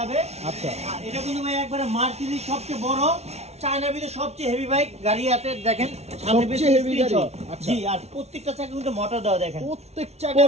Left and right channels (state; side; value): late; left; 0.31 ms